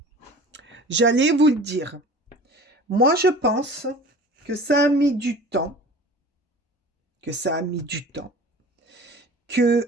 J'allais vous le dire. Moi, je pense que ça a mis du temps.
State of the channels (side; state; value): both; normal; correlation 0.41